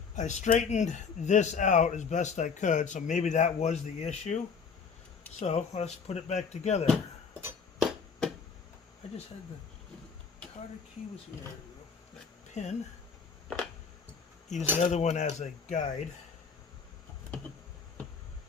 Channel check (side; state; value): right; quieter; 5.8 dB